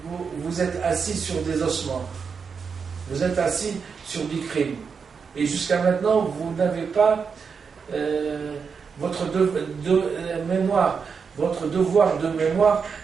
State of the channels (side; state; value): left; quieter; 5.8 dB